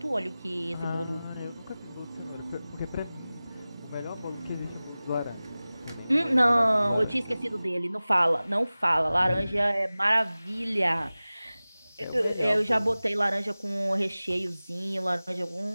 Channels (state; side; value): inverted; both; correlation -0.97